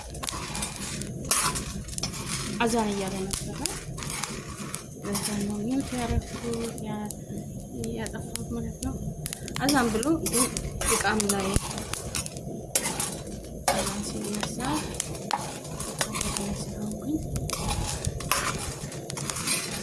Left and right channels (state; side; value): identical; both; correlation 1.00